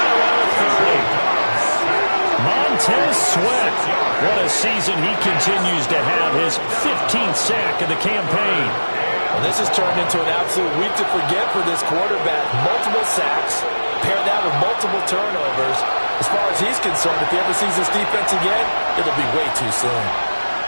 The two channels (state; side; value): inverted; both; correlation -1.00